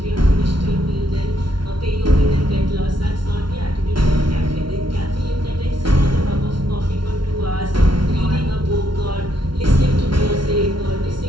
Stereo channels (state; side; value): late; left; 0.73 ms